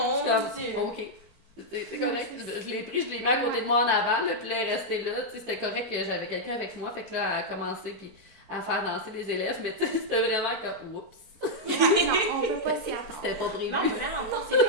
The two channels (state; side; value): late; right; 4.5 ms